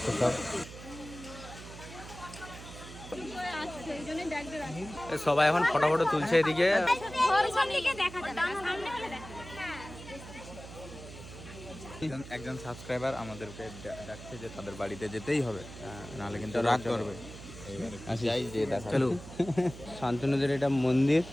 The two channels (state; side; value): noise; right; hum, 14 dB below the sound